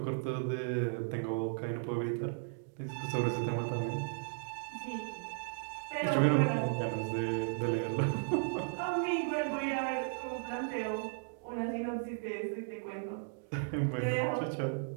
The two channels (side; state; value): left; silent; digital silence